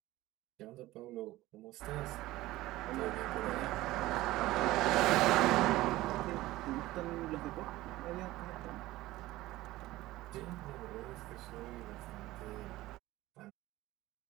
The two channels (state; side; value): quieter; left; 17.3 dB